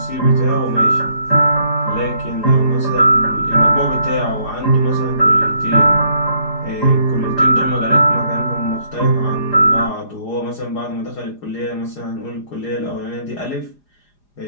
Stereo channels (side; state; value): right; late; 4.9 ms